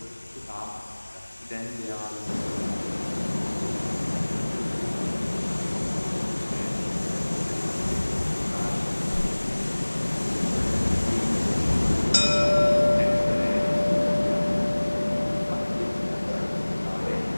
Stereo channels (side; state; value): both; inverted; correlation -1.00